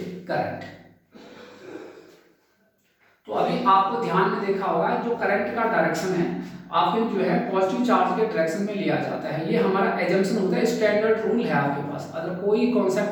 करंट। तो अभी आपको ध्यान में देखा होगा जो करंट का डायरेक्शन है आपके जो है पॉजिटिव चार्ज के डायरेक्शन में लिया जाता है, ये हमारा एजम्पशन होता है, स्टैंडर्ड रूल है आपके पास, अगर कोई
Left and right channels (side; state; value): both; identical; correlation 1.00